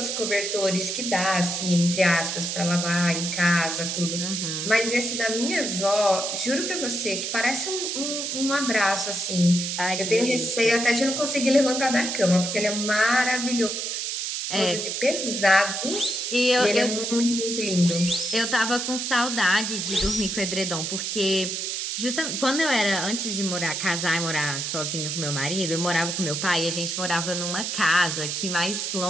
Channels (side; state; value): right; noise; hiss, 2 dB below the sound